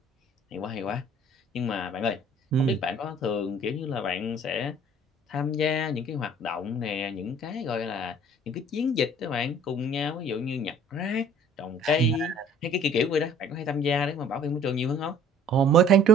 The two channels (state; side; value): normal; both; correlation 0.53